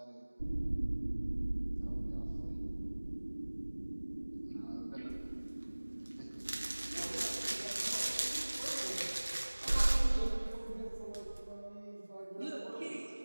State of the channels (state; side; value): inverted; both; correlation -1.00